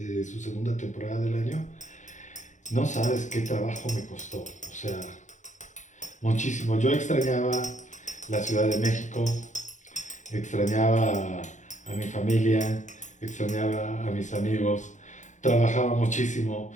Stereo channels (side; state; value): right; late; 0.35 ms